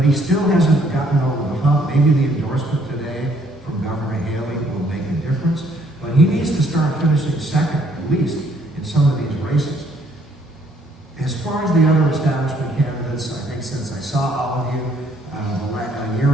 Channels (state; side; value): normal; both; correlation 0.65